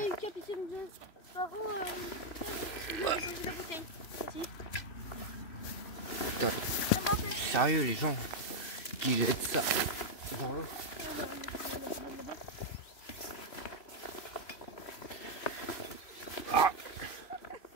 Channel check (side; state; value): right; late; 3.0 ms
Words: a une capitaine de Sparrow. Il a posé la bouteille. Ici. Putain, Ça m'a fait. sérieux les gens qui jettent ça dans l'eau. On va la mettre là-bas.